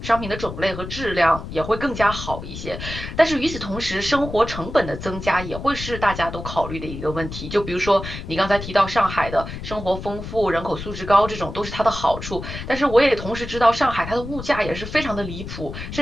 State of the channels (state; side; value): noise; left; rumble, 9 dB below the sound